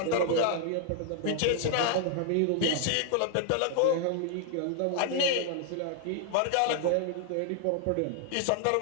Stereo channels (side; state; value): both; different; correlation 0.00